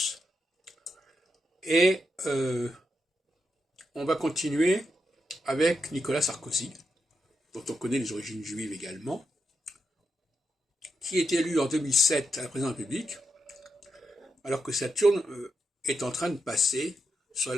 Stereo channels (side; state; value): both; normal; correlation 0.84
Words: Et on va continuer avec Nicolas Sarkozy, dont on connaît les origines juives également, qui est élu en 2007 à la présidence de la République, alors que Saturne est en train de passer sur